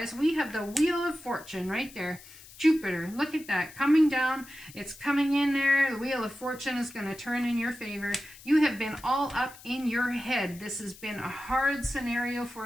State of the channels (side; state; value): left; noise; hiss, 20 dB below the sound